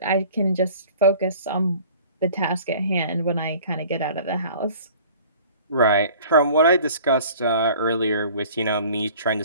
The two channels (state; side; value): inverted; both; correlation -0.48